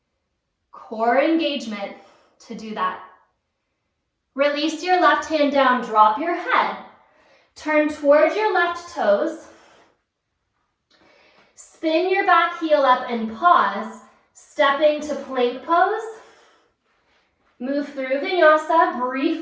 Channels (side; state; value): both; identical; correlation 1.00